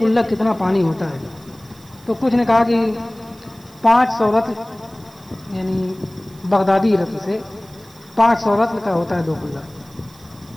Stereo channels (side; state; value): right; noise; hiss, 26 dB below the sound